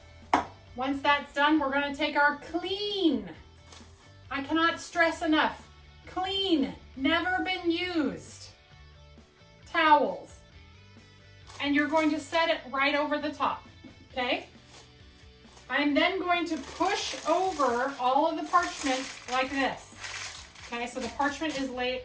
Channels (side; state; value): both; identical; correlation 1.00